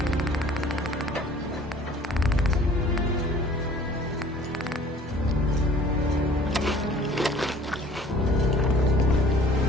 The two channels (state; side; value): normal; both; correlation 0.51